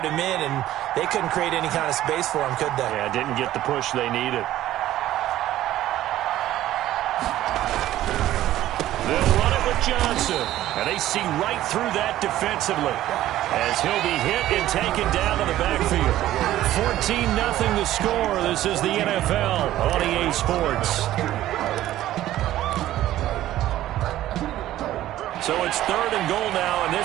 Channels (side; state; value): left; quieter; 13.9 dB